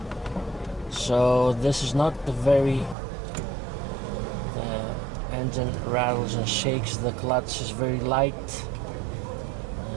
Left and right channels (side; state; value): left; drops out; at 3.0 s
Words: So this is not the very the engine rattles and shakes. The clutch is very light.